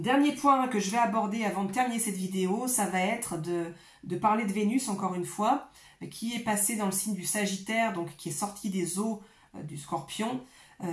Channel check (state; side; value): identical; both; correlation 1.00